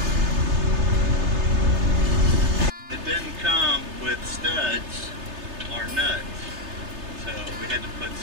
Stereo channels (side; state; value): left; late; 3.3 ms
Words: It didn't come with studs or nuts. had to put